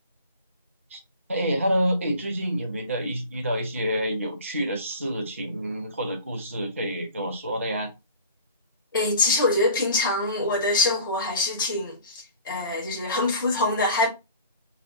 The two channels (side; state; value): both; inverted; correlation -0.43